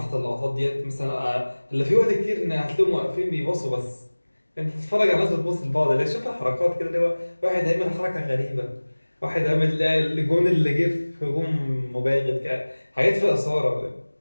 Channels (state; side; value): inverted; both; correlation -1.00